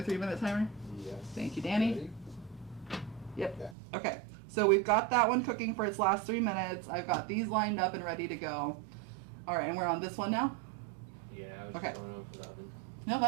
3-minute timer? Yes. Thank you, Danny. Ready? Yep. Yeah. Okay. So we've got that one cooking for its last 3 minutes. I've got these lined up and ready to go. All right, and we're on this one now? Yeah, I was Okay. just going over the oven. No,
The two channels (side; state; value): left; drops out; at 3.8 s